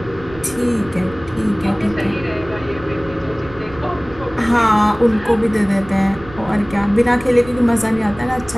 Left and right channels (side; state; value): right; noise; rumble, 18 dB below the sound